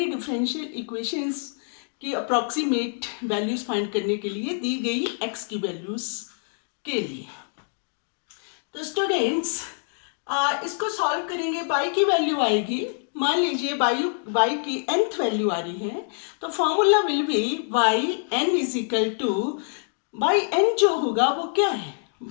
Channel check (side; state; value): right; silent; 59 dB below the other